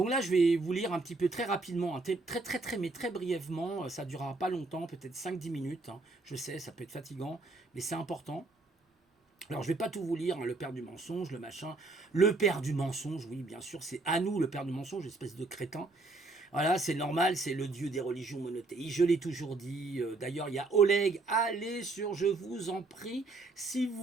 là, je vais vous lire un petit peu très rapidement, hein, mais très brièvement, ça ne durera pas longtemps, peut-être 5-10 minutes. Hein. Je sais, ça peut être fatigant, mais c'est important. Alors, je ne vais pas tout vous lire, hein, le père du mensonge, le machin. Le père du mensonge, oui, bien sûr, c'est à nous le père du mensonge, espèce de crétin. Voilà, c'est normal, c'est le dieu des religions monothéistes. Je l'ai toujours dit. D'ailleurs, il y a Oleg. Allez sur, je vous en prie, si vous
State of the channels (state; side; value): quieter; left; 3.4 dB